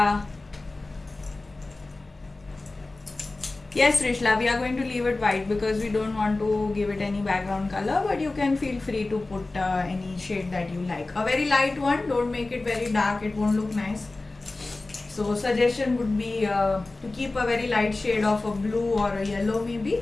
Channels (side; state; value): right; quieter; 3.2 dB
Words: Yes, Rishla, we are going to leave it white because we don't want to give it any background color, but you can feel free to put any shade that you like. A very light one, don't make it very dark, it won't look nice. So suggestion would be to keep a very light shade of a blue or a yellow maybe,